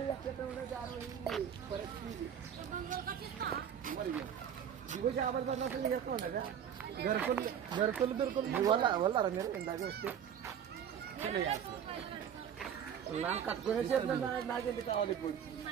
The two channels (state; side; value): quieter; left; 8.7 dB